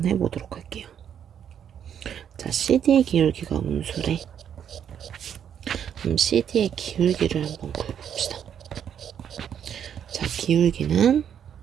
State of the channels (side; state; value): left; quieter; 8.8 dB